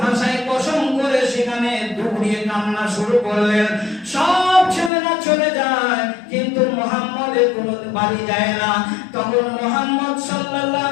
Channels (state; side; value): drops out; right; at 4.9 s